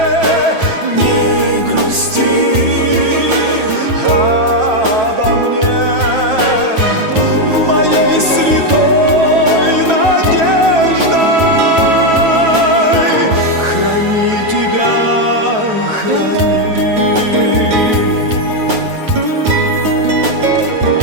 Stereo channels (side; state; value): left; late; 9.2 ms